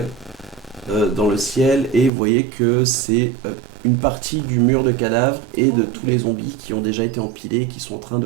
dans le ciel et vous voyez que c'est une partie du mur de cadavres et de tous les zombies qui ont déjà été empilés et qui sont en train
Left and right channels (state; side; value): drops out; left; at 2.1 s